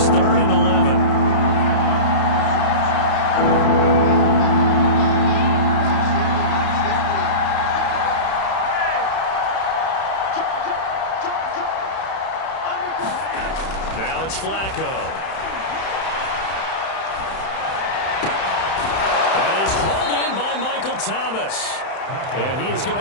3rd and 11. Now it's Flacco. And he's hauled in by Michael Thomas. And he is going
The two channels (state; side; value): late; right; 31 ms